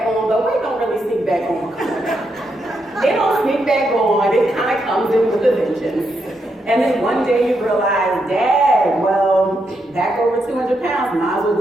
on, but weight don't really sneak back on. It don't sneak back on. It kind of comes in with a vengeance. And then one day you realize, Dad, well, back over 200 pounds, might as well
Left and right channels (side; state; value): both; normal; correlation 0.81